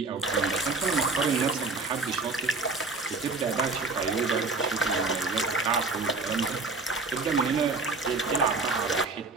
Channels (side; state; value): left; quieter; 3.7 dB